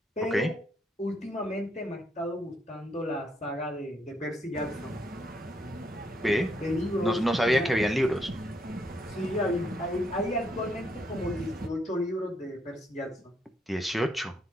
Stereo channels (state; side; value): normal; both; correlation 0.74